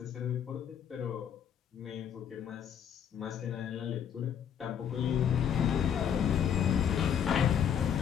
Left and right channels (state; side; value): quieter; right; 8.4 dB